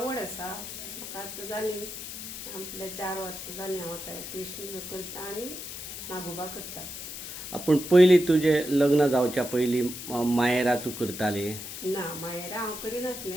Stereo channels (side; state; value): left; noise; hiss, 9 dB below the sound